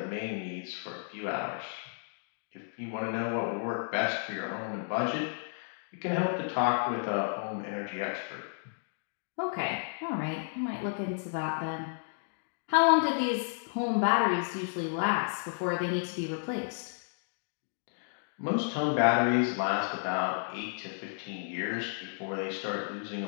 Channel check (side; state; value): right; silent; digital silence